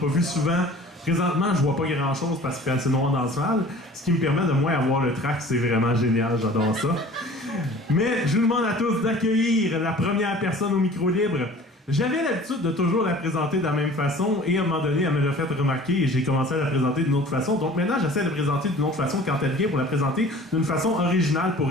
vus souvent. Présentement, je vois pas grand-chose parce qu'il fait assez noir dans la salle, ce qui me permet de moins avoir le track. C'est vraiment génial, j'adore ça. Mais je vous demande à tous d'accueillir la première personne au micro libre. J'avais l'habitude de toujours la présenter de la même façon et à un moment donné, elle me l'a fait remarquer et j'ai commencé à la présenter d'une autre façon. Donc maintenant, j'essaie de la présenter d'une autre façon quand elle vient pour la présenter d'une façon originale pour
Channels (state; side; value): normal; both; correlation 0.46